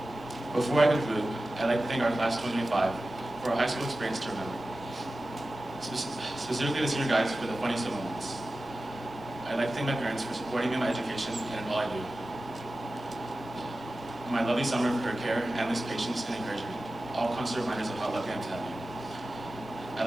Before I conclude, I'd like to thank our class 2025 for our high school experience to remember. Specifically the senior guys for the funniest of moments. I'd like to thank my parents for supporting me in my education and in all I do. My lovely summer for her care, endless patience, and encouragement, all constant reminders of how lucky I am to have you. I'd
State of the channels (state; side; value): noise; right; rumble, 27 dB below the sound